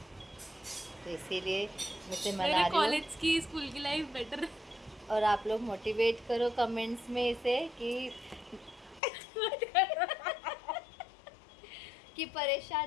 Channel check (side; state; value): right; drops out; at 9.0 s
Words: तो इसीलिए मैं से मेरे मना रही हूँ। कॉलेज की स्कूल की लाइफ बेटर। और आप लोग मोटिवेट करो कमेंट्स में इसे कि